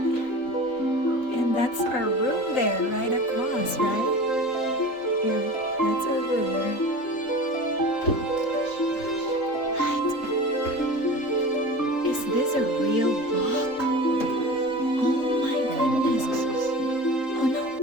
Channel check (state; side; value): late; right; 3.8 ms